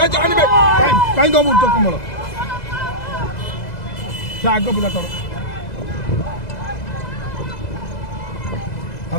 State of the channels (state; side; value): late; right; 2.0 ms